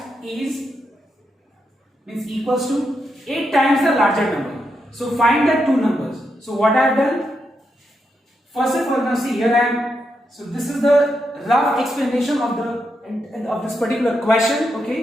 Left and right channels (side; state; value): both; normal; correlation 0.83